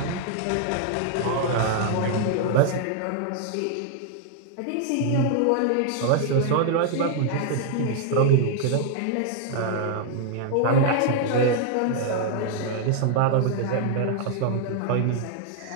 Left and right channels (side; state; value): both; different; correlation 0.00